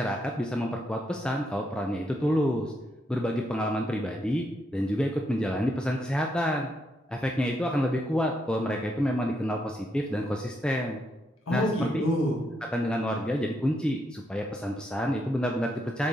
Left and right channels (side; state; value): both; normal; correlation 0.79